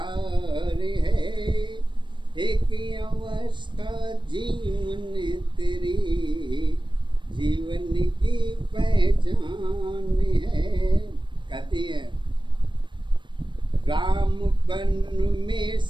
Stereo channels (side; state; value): left; late; 0.23 ms